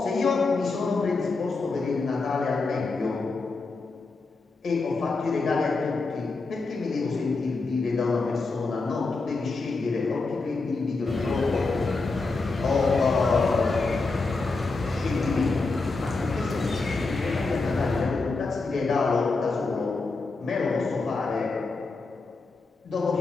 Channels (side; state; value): right; quieter; 3.8 dB